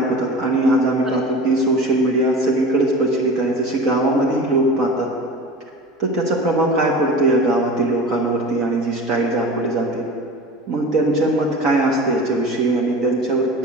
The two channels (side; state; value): both; normal; correlation 0.35